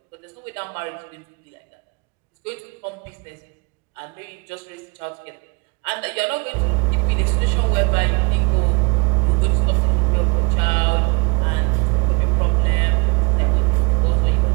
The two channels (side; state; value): left; quieter; 29.5 dB